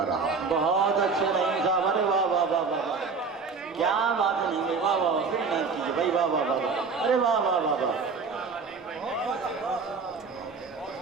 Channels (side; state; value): left; quieter; 4.8 dB